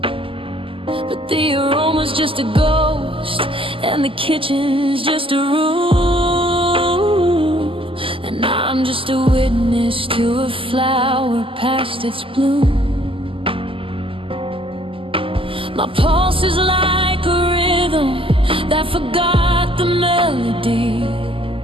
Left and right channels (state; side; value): late; left; 0.25 ms